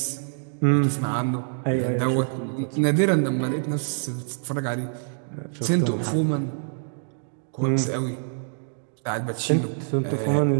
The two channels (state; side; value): silent; left; 61 dB below the other